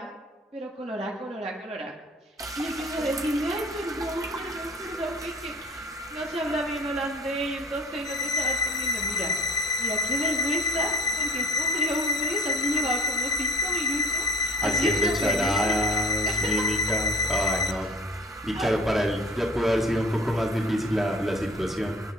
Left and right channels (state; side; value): normal; both; correlation 0.46